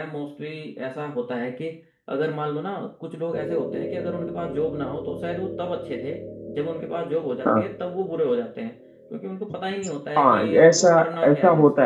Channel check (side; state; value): both; identical; correlation 1.00